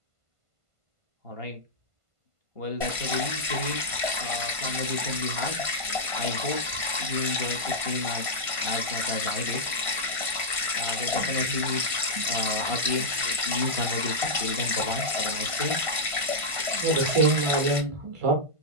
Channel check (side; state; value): left; late; 1.5 ms